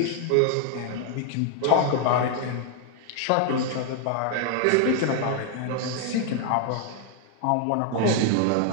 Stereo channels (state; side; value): different; both; correlation 0.00